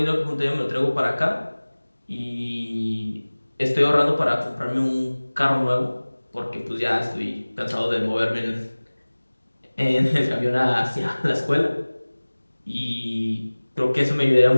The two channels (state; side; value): inverted; both; correlation -1.00